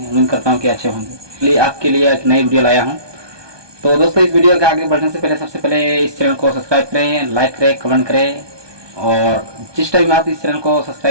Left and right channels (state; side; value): late; left; 1.2 ms